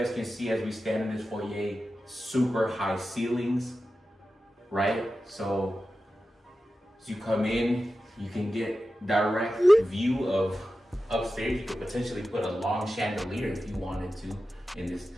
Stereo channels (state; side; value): normal; both; correlation 0.93